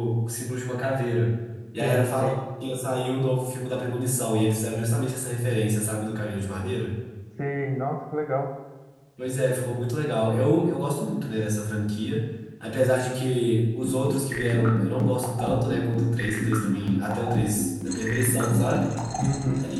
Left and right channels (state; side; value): identical; both; correlation 1.00